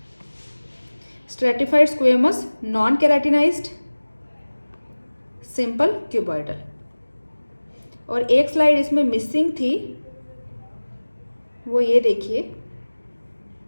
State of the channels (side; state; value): both; inverted; correlation -1.00